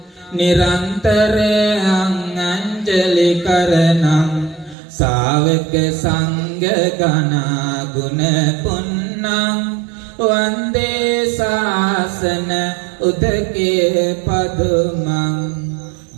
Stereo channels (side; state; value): left; drops out; at 4.8 s